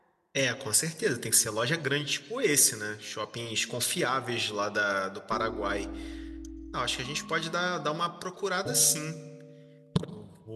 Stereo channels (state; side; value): identical; both; correlation 1.00